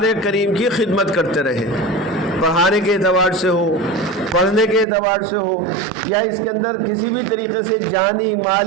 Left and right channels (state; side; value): drops out; left; at 4.9 s